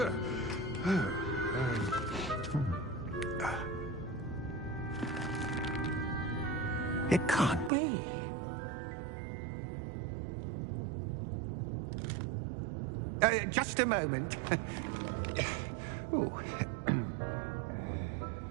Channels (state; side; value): drops out; left; at 7.7 s